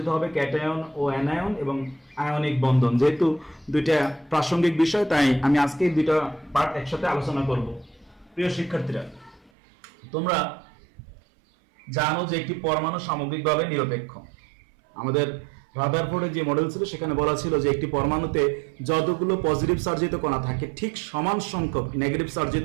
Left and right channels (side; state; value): left; drops out; at 9.5 s